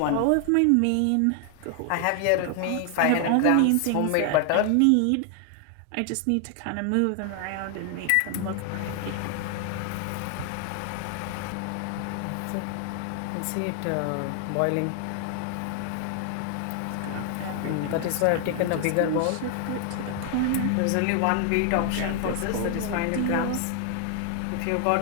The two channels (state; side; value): different; both; correlation 0.00